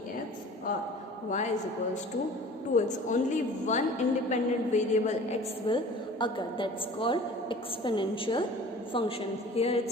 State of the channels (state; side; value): normal; both; correlation 0.44